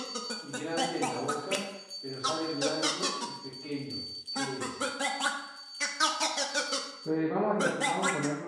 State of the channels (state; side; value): identical; both; correlation 1.00